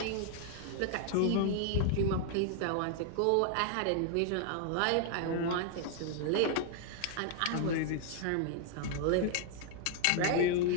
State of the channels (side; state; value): both; different; correlation 0.00